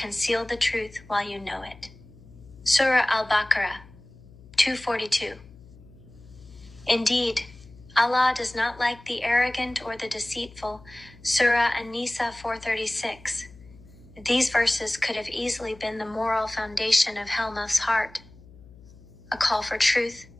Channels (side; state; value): left; noise; hum, 22 dB below the sound